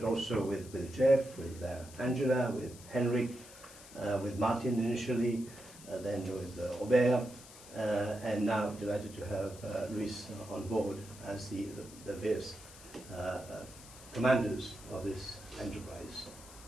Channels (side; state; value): left; noise; hiss, 18 dB below the sound